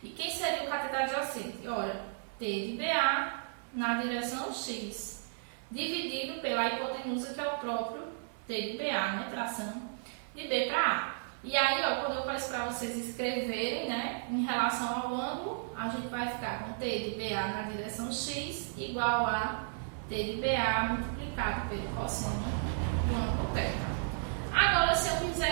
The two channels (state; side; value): silent; left; 55 dB below the other